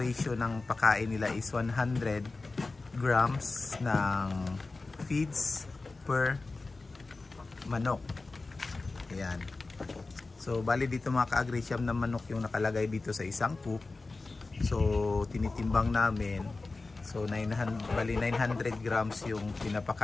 ng pakain nila is 100 grams ng feeds per manok. Ayan. So bali dito mga ka-agri, siyam na manok yung nakalagay dito sa isang coop. So tinitimbang namin. So 900 grams yung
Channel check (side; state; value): right; quieter; 3.6 dB